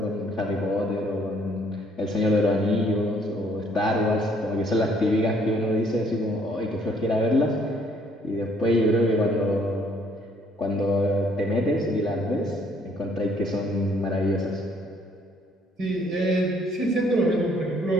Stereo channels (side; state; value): both; normal; correlation 0.64